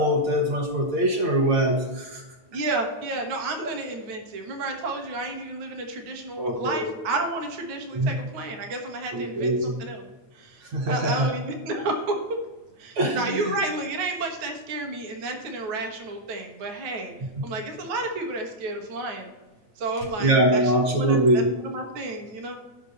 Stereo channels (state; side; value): late; left; 9.3 ms